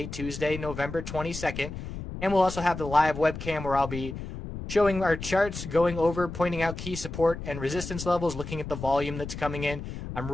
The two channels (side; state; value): left; noise; rumble, 9 dB below the sound